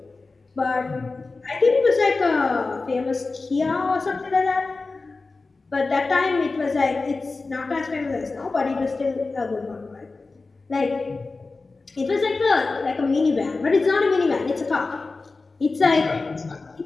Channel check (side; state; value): right; quieter; 3.7 dB